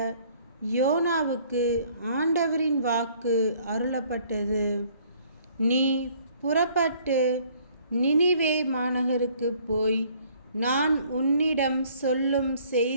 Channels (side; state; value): both; inverted; correlation -0.59